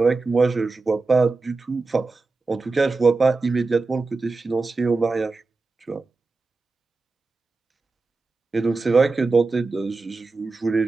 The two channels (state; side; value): quieter; left; 3.7 dB